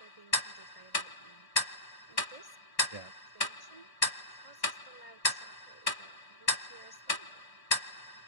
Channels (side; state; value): right; late; 1.1 ms